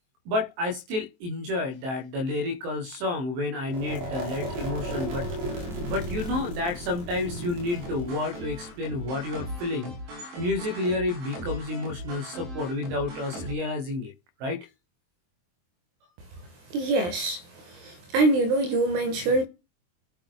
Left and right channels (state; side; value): late; left; 23 ms